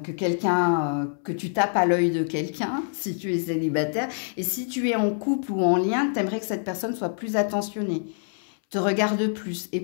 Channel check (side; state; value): right; silent; 61 dB below the other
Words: que tu tapes à l'œil de quelqu'un, si tu es célibataire. Et si tu es en couple ou en lien, tu aimerais que cette personne soit plus attentionnée, te regarde plus et